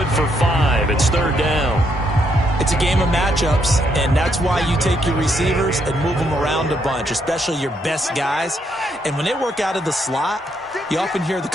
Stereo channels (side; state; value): both; normal; correlation 0.75